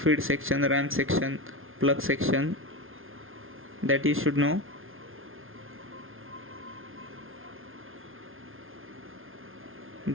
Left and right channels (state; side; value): late; left; 0.60 ms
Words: section, ram section, plug section, that you should know.